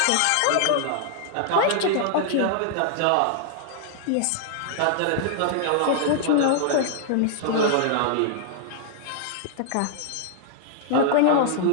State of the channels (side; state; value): both; different; correlation -0.01